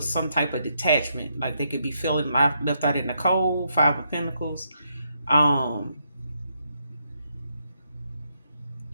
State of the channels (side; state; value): both; inverted; correlation -0.78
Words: some type of detachment, like they could be feeling left out in the cold. Five of Pentacles. um